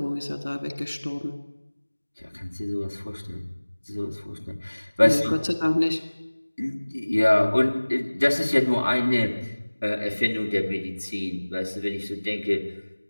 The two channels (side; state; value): both; inverted; correlation -1.00